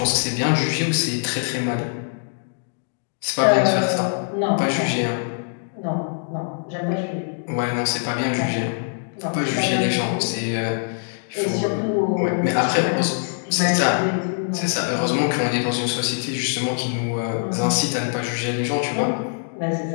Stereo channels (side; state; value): right; silent; 63 dB below the other